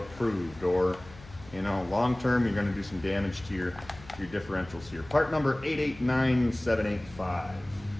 or, you know, long term you're going to do some damage to your differentials here. Part number 889785.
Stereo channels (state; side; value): noise; left; hum, 20 dB below the sound